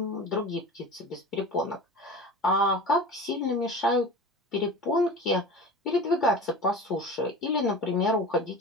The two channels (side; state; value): both; normal; correlation 0.34